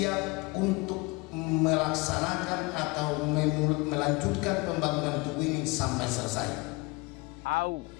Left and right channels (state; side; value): quieter; right; 25.9 dB